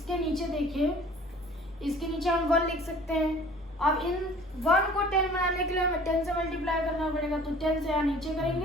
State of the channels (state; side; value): normal; both; correlation 0.49